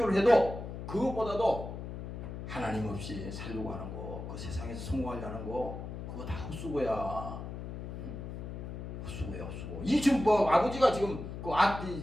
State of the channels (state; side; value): noise; left; hum, 8 dB below the sound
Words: 해도 그것보다도 하나님 없이 살려고 하는 거, 그 세상에서 성공하려는 거, 그거 다 헛수고야. 헛수고야, 헛수고. 이 지금 아버지가 지금